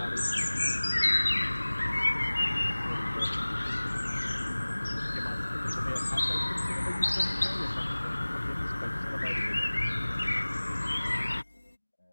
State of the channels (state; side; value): inverted; both; correlation -1.00